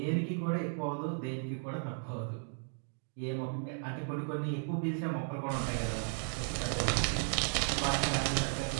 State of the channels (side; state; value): left; silent; 54 dB below the other